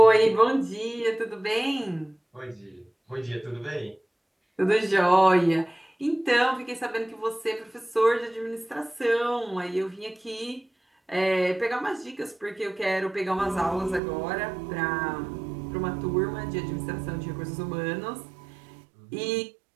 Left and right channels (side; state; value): left; drops out; at 14.0 s